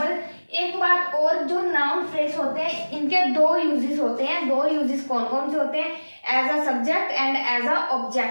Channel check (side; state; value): both; inverted; correlation -1.00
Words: एक बात और, जो नाउन फ्रेज होते हैं इनके 2 यूजेस होते हैं। 2 यूजेस कौन कौन से होते हैं, as a subject and as a